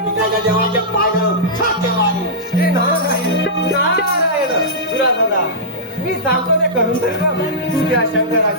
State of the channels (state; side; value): normal; both; correlation -0.14